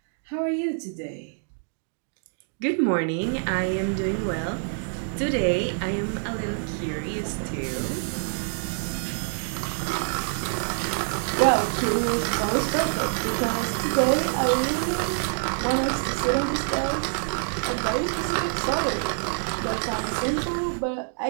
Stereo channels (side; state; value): left; silent; 61 dB below the other